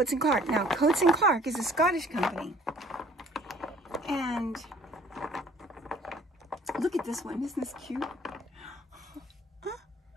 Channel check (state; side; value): normal; both; correlation 0.55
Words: & Clark. Now, Coates & Clark is a Scottish company. And look at this one. Isn't this cute?